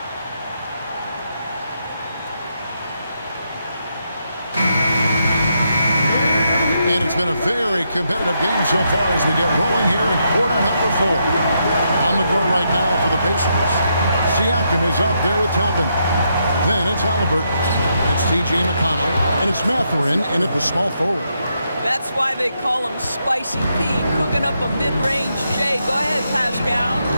And it's been a very competitive game so far as we get rolling here in quarter number 4. On the court right now for the Pacers. Siakam is up there with Toppin. Then it's Halliburton. It's T.J. McConnell. And it's Mathurin in at the small forward. That's why they call him Spicy P, cooking up a mid-range J. Go ahead, Pascal.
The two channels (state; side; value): inverted; both; correlation -0.80